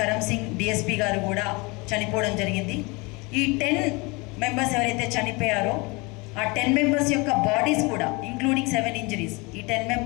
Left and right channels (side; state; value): right; quieter; 26.9 dB